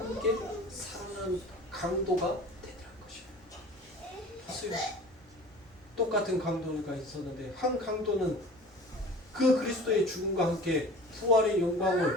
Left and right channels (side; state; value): both; normal; correlation 0.41